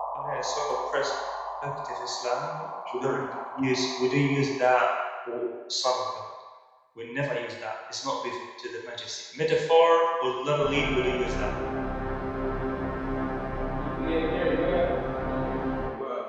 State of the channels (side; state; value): both; identical; correlation 1.00